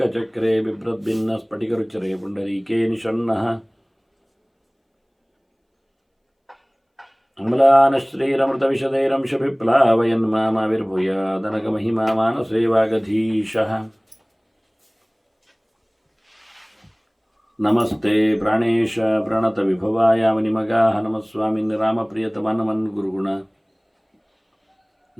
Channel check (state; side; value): identical; both; correlation 1.00